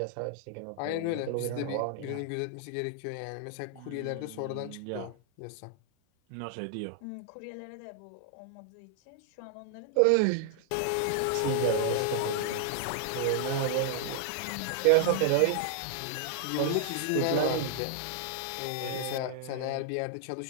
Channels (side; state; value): both; different; correlation 0.00